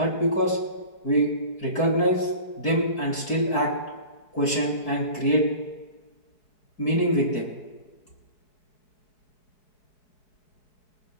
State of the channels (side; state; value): right; late; 4.6 ms